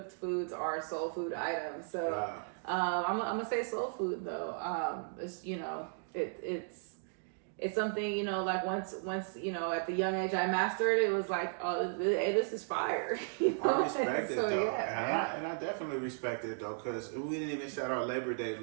foods are soul food items. So I'm gonna say soul food though. It's something, like once at the young age I mastered, it was like, oh, hey, this is fire. I respect it, so, though. Yeah, and I definitely respect it, though, because we didn't even shout out Labor Day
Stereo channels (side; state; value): left; silent; digital silence